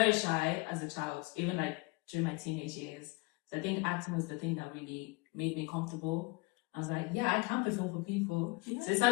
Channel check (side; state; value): right; quieter; 25.6 dB